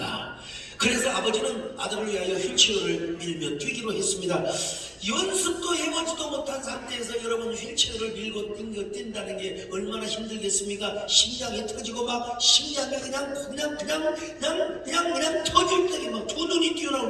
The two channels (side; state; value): both; identical; correlation 1.00